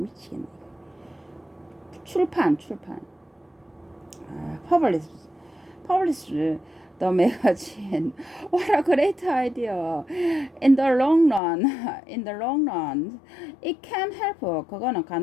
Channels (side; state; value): right; drops out; at 11.4 s